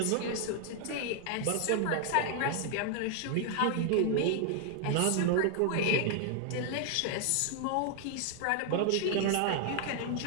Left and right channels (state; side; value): different; both; correlation 0.00